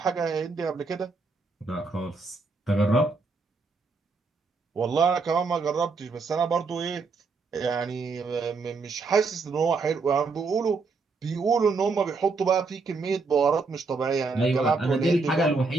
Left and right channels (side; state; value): left; quieter; 4.2 dB